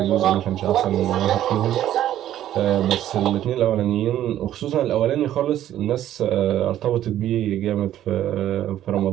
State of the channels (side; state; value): left; quieter; 12.1 dB